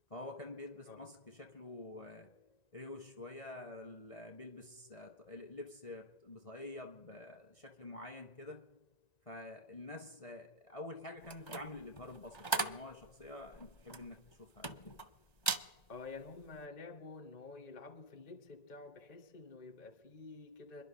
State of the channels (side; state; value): right; late; 1.9 ms